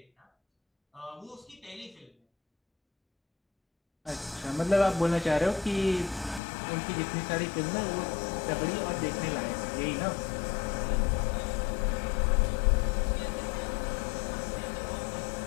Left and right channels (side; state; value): right; drops out; at 6.4 s